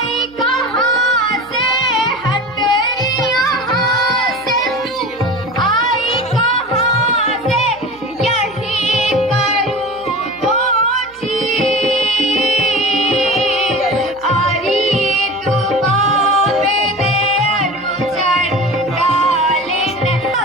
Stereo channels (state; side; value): noise; right; hum, 27 dB below the sound